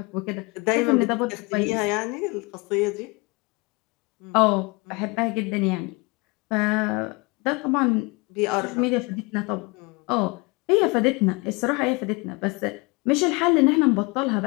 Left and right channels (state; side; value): quieter; right; 27.0 dB